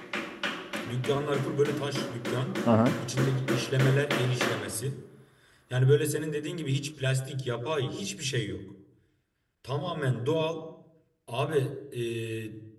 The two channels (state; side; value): identical; both; correlation 1.00